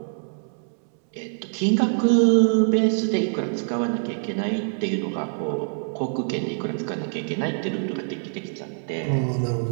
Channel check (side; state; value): left; silent; 62 dB below the other